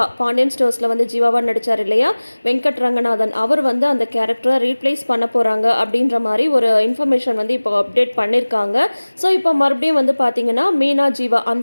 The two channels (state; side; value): inverted; both; correlation -1.00